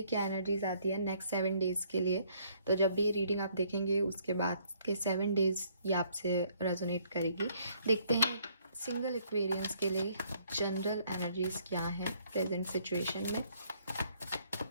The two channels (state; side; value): inverted; both; correlation -0.66